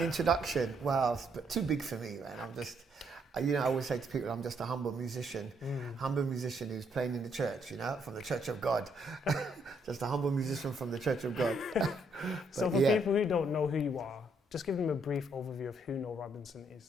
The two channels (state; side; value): normal; both; correlation 0.72